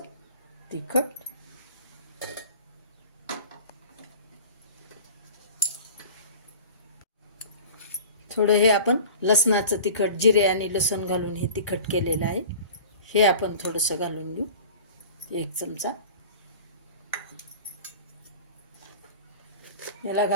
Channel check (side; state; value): both; inverted; correlation -0.40